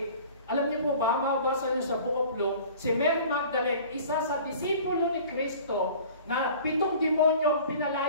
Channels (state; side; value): inverted; both; correlation -0.45